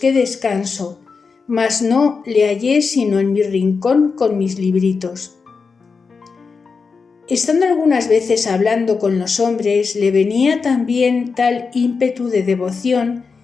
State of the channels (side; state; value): right; quieter; 5.0 dB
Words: descanso, mas no le hallé sino en mi rincón con mis libritos. Estando algunas veces hablando con los hombres, le venía también tal ímpetu de devoción